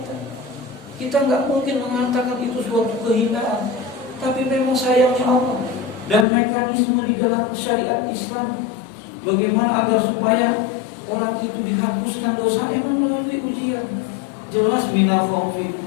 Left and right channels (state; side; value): drops out; right; at 6.2 s